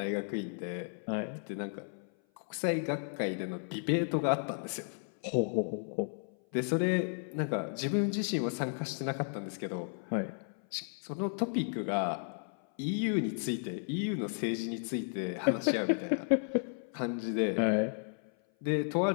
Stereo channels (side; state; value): right; silent; 55 dB below the other